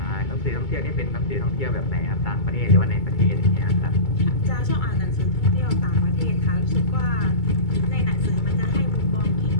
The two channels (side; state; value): right; late; 2.2 ms